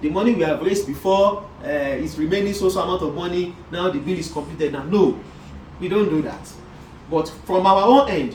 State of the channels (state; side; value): identical; both; correlation 1.00